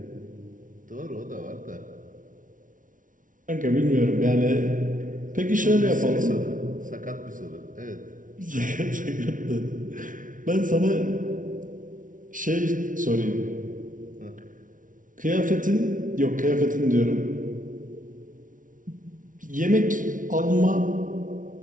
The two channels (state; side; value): late; left; 0.38 ms